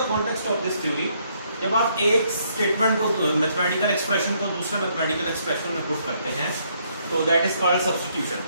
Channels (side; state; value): both; inverted; correlation -0.70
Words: context of this theory? जब आप एक स्टेटमेंट को, मैथमेटिकल एक्सप्रेशन को दूसरे मैथमेटिकल एक्सप्रेशन में पुट करते हैं तो दैट इज कॉल्ड सब्स्टिट्यूशन।